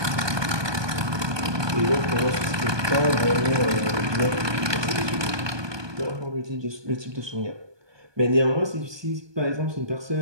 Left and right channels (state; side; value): late; left; 1.2 ms